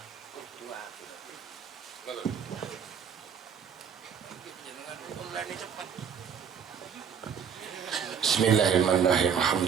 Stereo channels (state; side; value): quieter; left; 7.3 dB